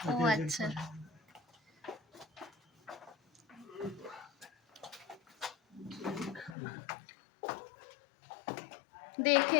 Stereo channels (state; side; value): drops out; right; at 6.6 s